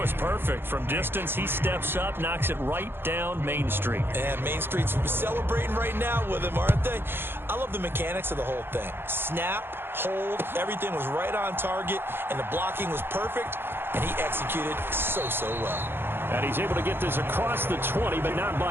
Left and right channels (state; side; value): late; left; 0.10 ms